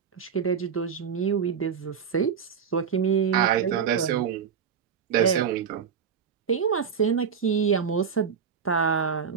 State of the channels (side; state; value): left; quieter; 6.9 dB